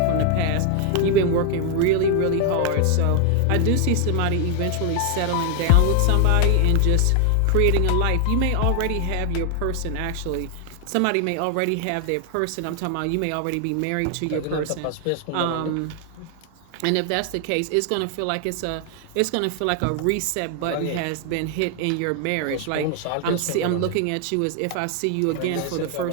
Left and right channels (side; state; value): both; different; correlation 0.00